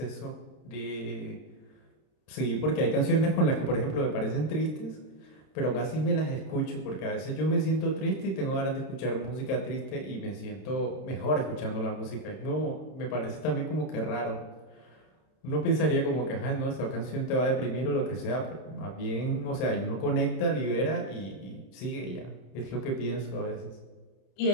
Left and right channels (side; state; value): right; late; 32 ms